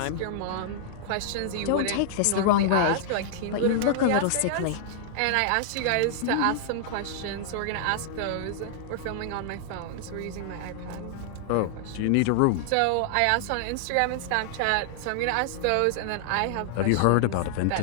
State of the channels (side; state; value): both; different; correlation -0.01